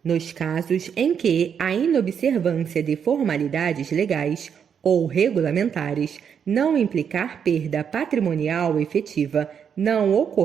Nos casos em que a inobservância de formalidades legais ou regulamentares não implicar perda patrimonial efetiva, não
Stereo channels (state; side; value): quieter; left; 7.5 dB